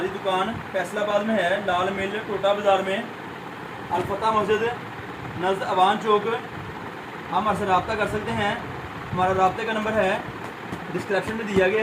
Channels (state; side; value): identical; both; correlation 1.00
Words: दुकान फैसलाबाद में है, लाल मिल टोटा बाज़ार में, अलफता मस्जिद नज़द अवान चौक। हम हमारे से रब्ता कर सकते हैं। हमारा रब्ते का नंबर है डिस्क्रिप्शन में दिया